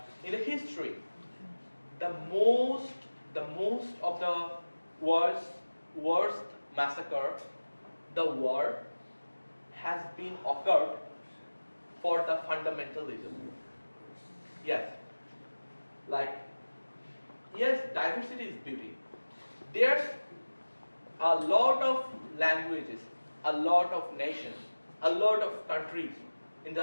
in the history, the most of the worst massacre, the war has been occurred for the fundamentalism. Yes, diversity is beauty. There's a lot of languages, a lot of nations, a lot of countries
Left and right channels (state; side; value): inverted; both; correlation -1.00